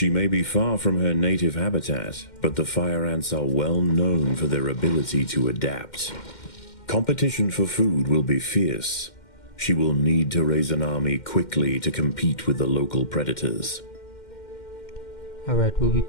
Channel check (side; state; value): right; late; 2.1 ms